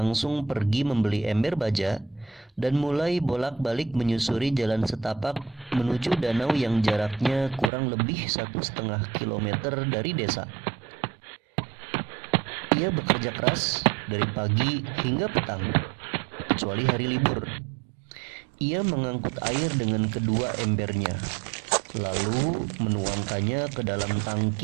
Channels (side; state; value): left; drops out; at 7.7 s